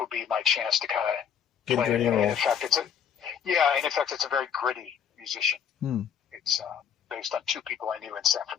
would be my chance to kind of play it. In effect, it's a very gritty musician. It's based on two people I knew in San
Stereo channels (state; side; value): quieter; right; 8.1 dB